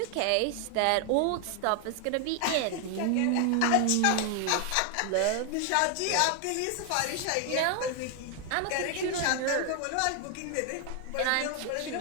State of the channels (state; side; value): different; both; correlation 0.00